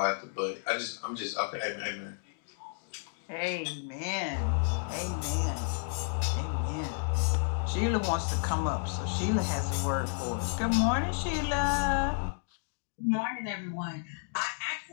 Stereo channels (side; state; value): right; silent; 57 dB below the other